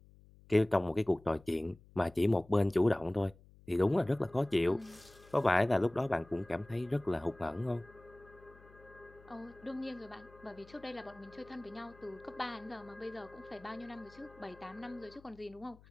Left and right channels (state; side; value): noise; left; hum, 24 dB below the sound